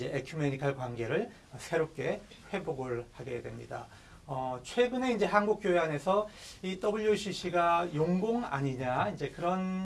에큐메니칼 관계를 새롭게 회복을 하게 됩니다. 최근에 이제 한국 교회 안에서 이 WCC가 용공 아니냐 이제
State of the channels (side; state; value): both; identical; correlation 1.00